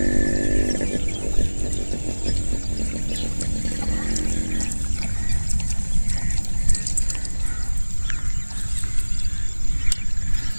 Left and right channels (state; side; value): inverted; both; correlation -1.00